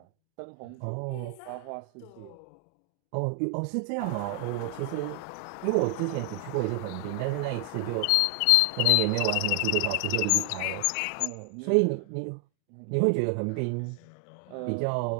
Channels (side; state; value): both; different; correlation 0.00